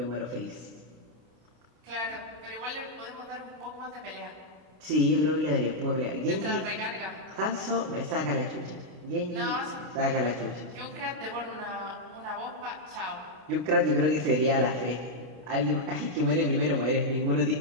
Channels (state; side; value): late; left; 32 ms